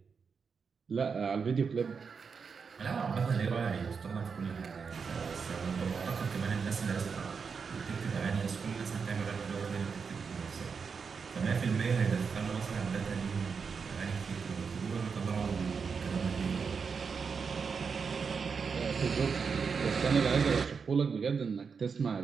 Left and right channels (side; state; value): left; quieter; 5.7 dB